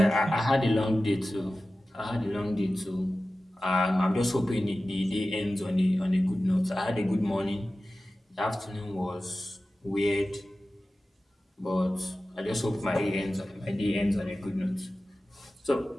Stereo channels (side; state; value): both; normal; correlation 0.95